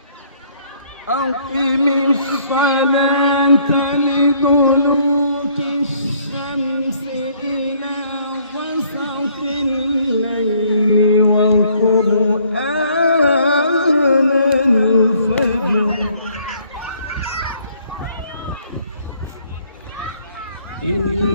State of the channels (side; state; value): both; inverted; correlation -0.63